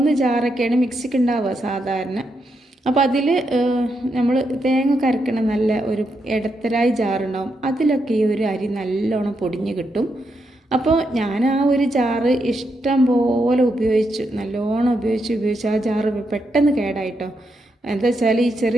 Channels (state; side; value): normal; both; correlation 0.82